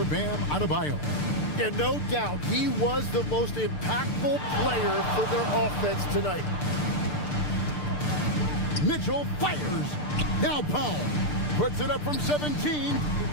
Bam Adebayo. Yeah, no doubt. He was the most impactful player for their offense tonight. Mitchell fires. Now Powell puts it up from 17.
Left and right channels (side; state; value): right; late; 6.7 ms